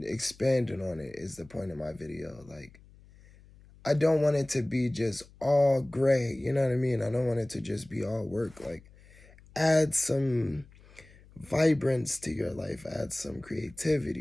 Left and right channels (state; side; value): noise; left; hum, 24 dB below the sound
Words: expanding on it is the point of my video. Like I don't want it to be just all gray, you know what I mean? I don't want it to just be all work. Like add some vibrance to your life, add some